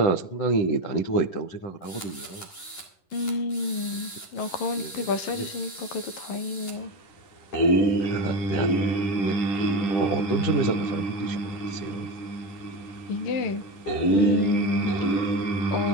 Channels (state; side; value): late; right; 10 ms